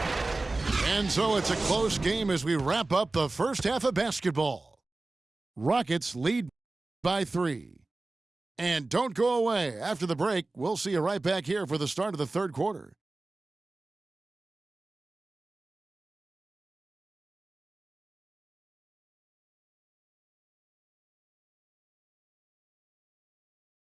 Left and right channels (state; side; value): quieter; left; 3.2 dB